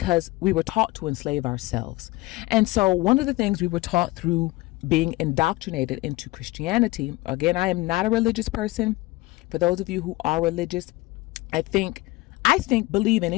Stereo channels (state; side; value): quieter; right; 20.7 dB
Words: we were taught to enslave ourselves. And so one of the things we were taught through being indoctrinated into Christianity, again, I am not a religious person. For those of you who are religious, I think believe in